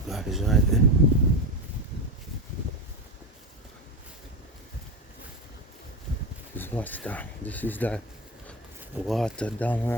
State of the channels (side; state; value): both; normal; correlation 0.19